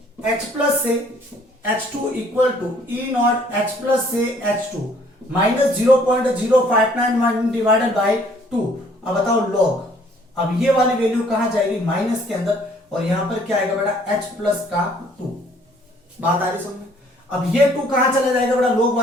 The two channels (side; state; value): both; normal; correlation 0.60